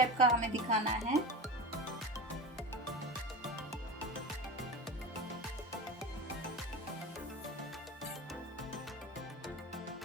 का हमें दिखाना है।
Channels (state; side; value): normal; both; correlation 0.27